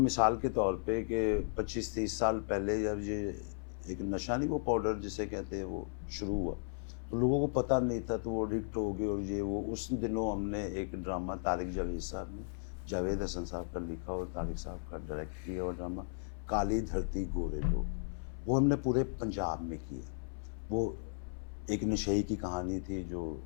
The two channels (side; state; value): right; silent; 54 dB below the other